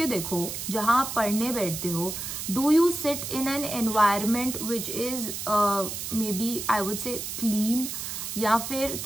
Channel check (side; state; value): right; noise; hiss, 6 dB below the sound